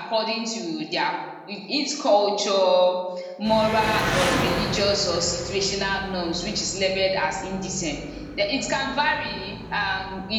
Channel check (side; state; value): both; identical; correlation 1.00